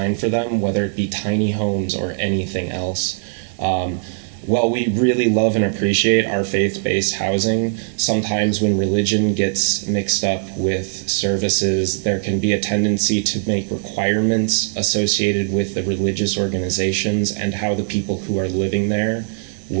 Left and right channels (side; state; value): left; silent; digital silence